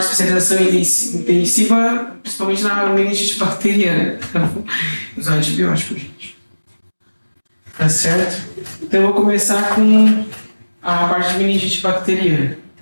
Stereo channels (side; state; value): both; inverted; correlation -1.00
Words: especialização intensiva, principalmente na meningite bacteriana, usar antibiótico, gente. Tá certo? Então eu vou começar com a parte de meningite bacteriana,